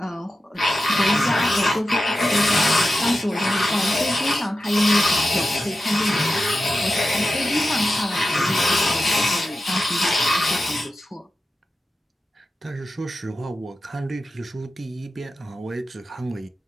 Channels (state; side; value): normal; both; correlation 0.91